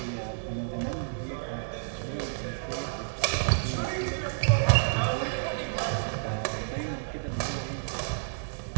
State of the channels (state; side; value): silent; left; digital silence